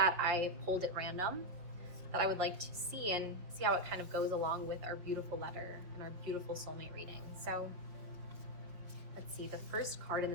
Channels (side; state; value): left; late; 5.8 ms